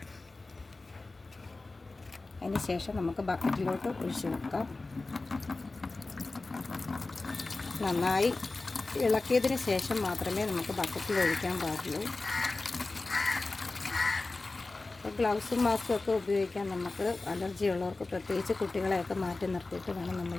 അതിന് ശേഷം നമുക്ക് ബക്കറ്റിലോട്ട് ഒഴിച്ചു വെക്കാം. നന്നായി ഇളക്കിയതിന് ശേഷം മാത്രമേ നമുക്ക് ബക്കറ്റിൽ ഒഴിക്കാൻ പാടുള്ളൂ. അപ്പോൾ ഗ്ലൗസും മാസ്കും ഒക്കെ ഉപയോഗിക്കാൻ നമുക്ക് അലർജി ഉള്ളവർക്ക്, പ്രത്യേകിച്ച് കുട്ടികളെയൊക്കെ മാറ്റി നിർത്തിയിട്ട് വേണം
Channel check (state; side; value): quieter; right; 3.4 dB